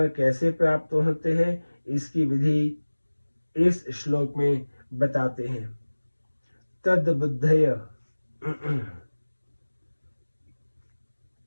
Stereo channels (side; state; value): both; inverted; correlation -1.00